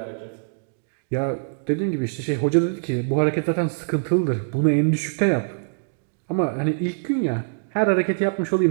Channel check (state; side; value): silent; left; digital silence